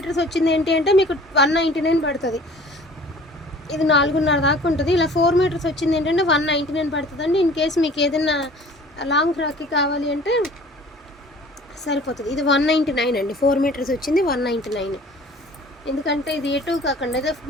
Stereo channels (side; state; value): both; normal; correlation 0.48